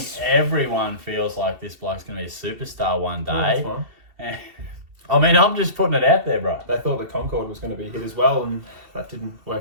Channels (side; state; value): left; late; 2.7 ms